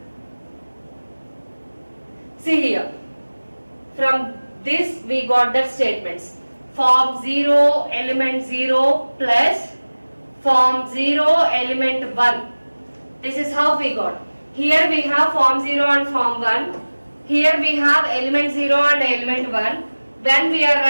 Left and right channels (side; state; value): both; inverted; correlation -1.00